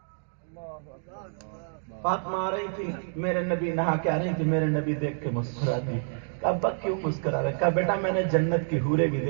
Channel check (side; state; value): left; silent; digital silence